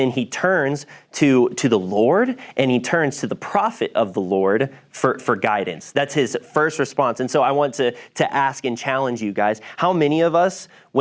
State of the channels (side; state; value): both; identical; correlation 1.00